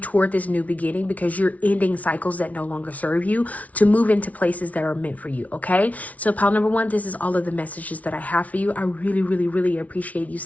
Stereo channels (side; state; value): right; late; 0.069 ms